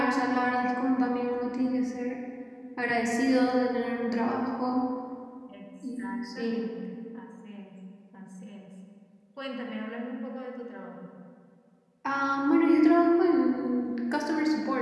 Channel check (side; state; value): both; identical; correlation 1.00